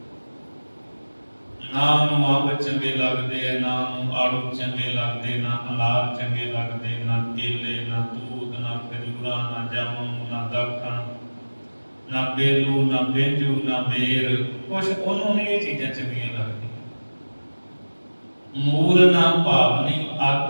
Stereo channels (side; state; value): both; inverted; correlation -1.00